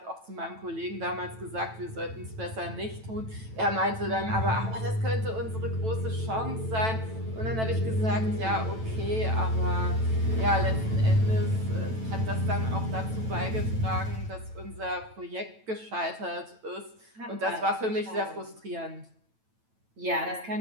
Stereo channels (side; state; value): left; late; 9.1 ms